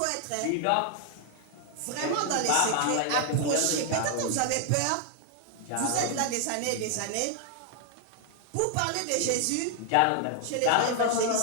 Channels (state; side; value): different; both; correlation 0.00